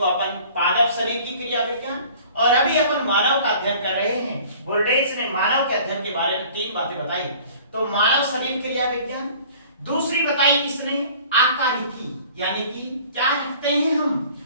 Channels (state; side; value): inverted; both; correlation -0.49